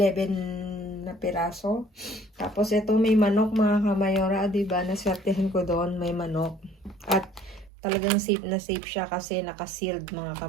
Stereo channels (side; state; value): left; drops out; at 7.7 s